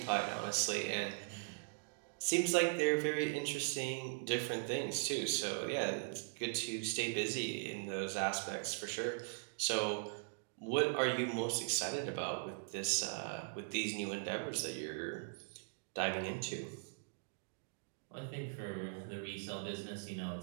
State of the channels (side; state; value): left; silent; digital silence